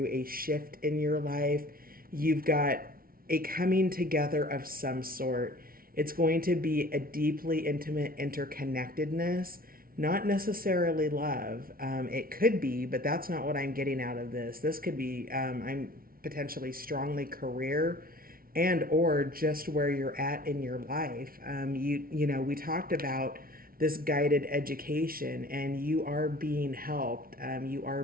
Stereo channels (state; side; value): late; left; 0.43 ms